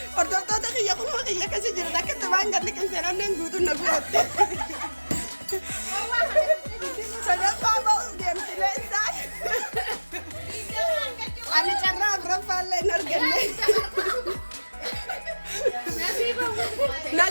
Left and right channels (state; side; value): inverted; both; correlation -1.00